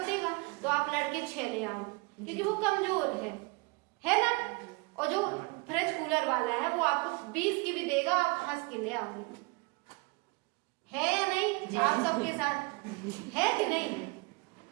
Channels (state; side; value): quieter; left; 28.2 dB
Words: देगा तो आप लड़के 6 ले आओ, क्योंकि वो कमजोर है ना। और जो फ्रिज कूलर वाला है वो आपको 20 की भी देगा, आप हंस के ले आओगे, है या नहीं, आप सबके साथ है कि नहीं।